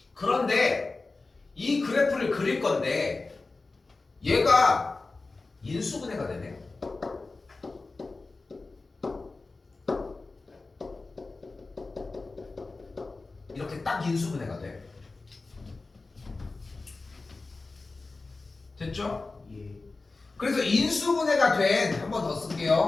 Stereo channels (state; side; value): quieter; right; 3.6 dB